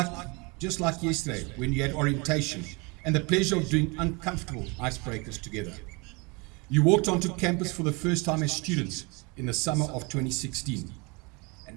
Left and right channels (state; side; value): quieter; left; 28.7 dB